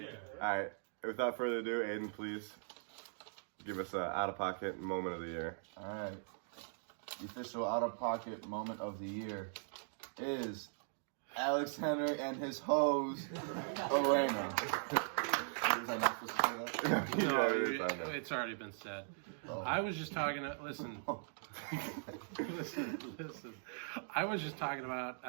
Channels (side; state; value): left; silent; digital silence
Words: All right. Without further ado, Aiden, please give us an out-of-pocket moment of the year. All right. The official out-of-pocket moment of the year is Alex Henry and his hose, Elena. Was I not supposed to say that? No, Yeah, it is, I know. it's already been said. Oh. I was just talking to, listen. listen. I was just talking about